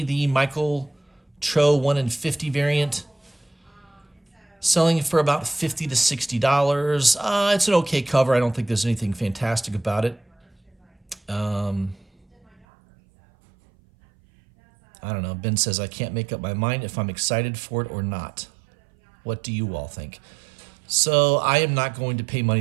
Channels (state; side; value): drops out; left; at 12.7 s